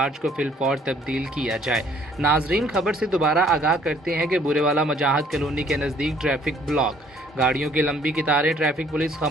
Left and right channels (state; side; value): normal; both; correlation 0.60